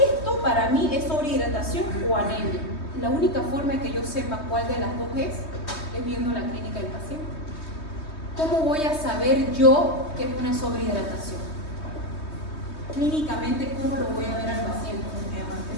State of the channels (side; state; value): right; late; 3.2 ms